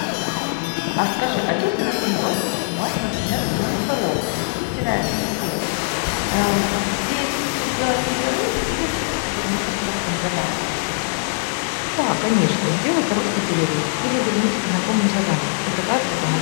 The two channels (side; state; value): right; silent; digital silence